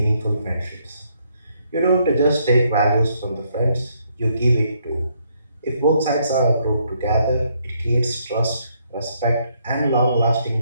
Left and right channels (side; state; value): both; inverted; correlation -0.72